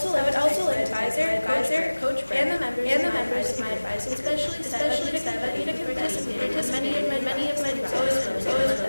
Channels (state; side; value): inverted; both; correlation -1.00